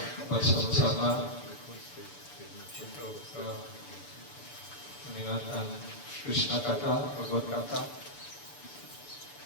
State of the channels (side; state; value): right; late; 6.9 ms